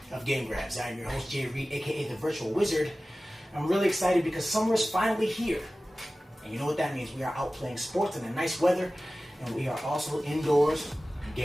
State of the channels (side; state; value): both; normal; correlation 0.96